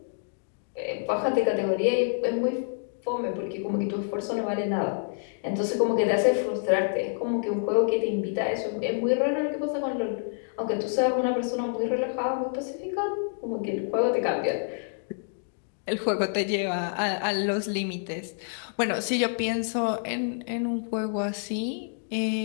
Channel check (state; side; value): silent; right; digital silence